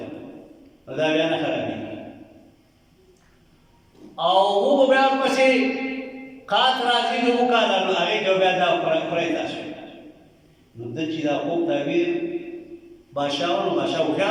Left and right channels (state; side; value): identical; both; correlation 1.00